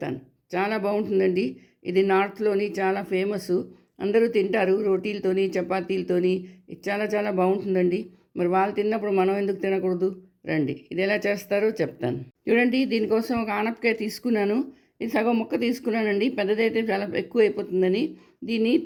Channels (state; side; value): identical; both; correlation 1.00